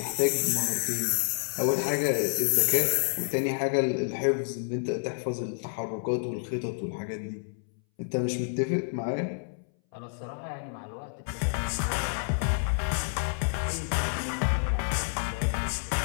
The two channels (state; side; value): silent; right; 59 dB below the other